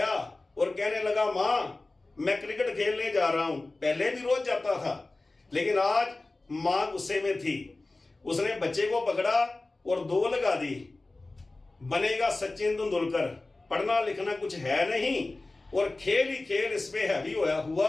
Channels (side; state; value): right; quieter; 3.1 dB